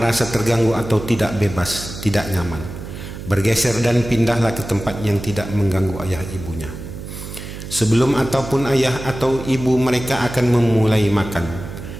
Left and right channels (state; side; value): noise; right; hum, 10 dB below the sound